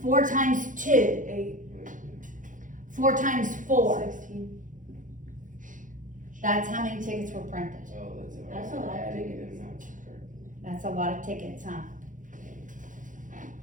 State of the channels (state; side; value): late; left; 0.38 ms